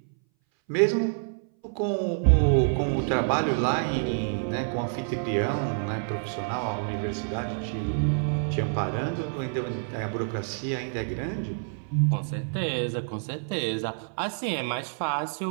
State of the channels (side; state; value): left; silent; 59 dB below the other